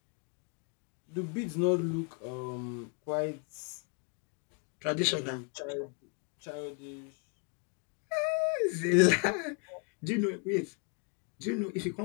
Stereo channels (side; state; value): right; quieter; 36.3 dB